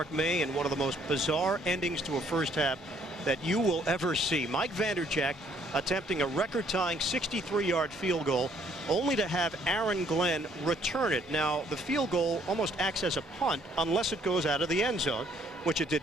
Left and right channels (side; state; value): both; normal; correlation 0.64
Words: May, and one of the most bizarre endings to a first half that you will ever see. Mike Vanderjagt attempting a record-tying 63-yard field goal, only to have Aaron Glenn return it. Now, the field goal almost acts as a punt unless it goes out of the end zone, which it